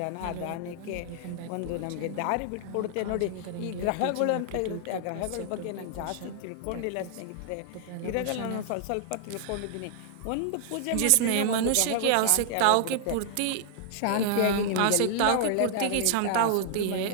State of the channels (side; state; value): both; different; correlation -0.01